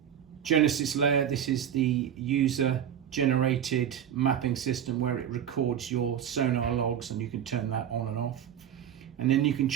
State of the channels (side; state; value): left; quieter; 9.5 dB